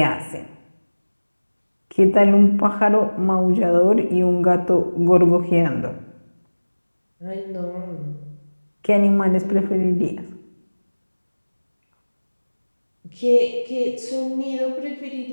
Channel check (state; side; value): inverted; both; correlation -1.00